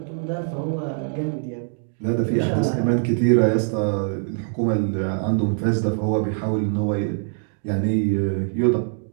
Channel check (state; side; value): silent; left; 63 dB below the other